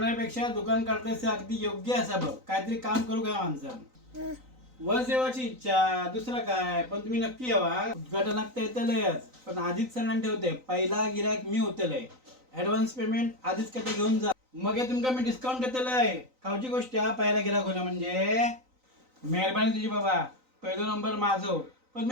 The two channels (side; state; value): left; late; 3.9 ms